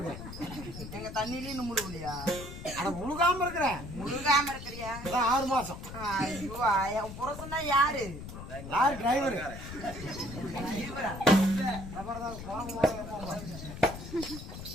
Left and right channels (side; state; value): left; noise; rumble, 10 dB below the sound